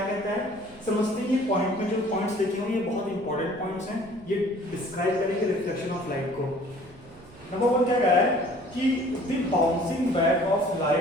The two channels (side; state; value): right; noise; hum, 23 dB below the sound